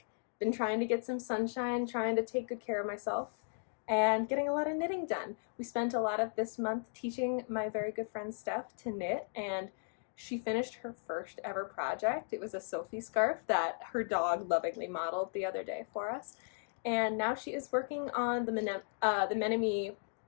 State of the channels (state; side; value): silent; right; digital silence